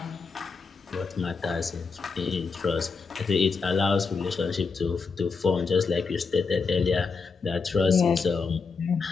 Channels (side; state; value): right; quieter; 4.8 dB